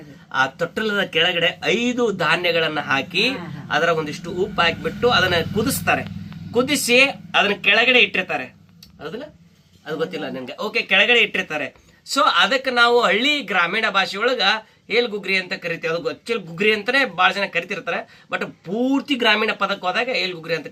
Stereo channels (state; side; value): identical; both; correlation 1.00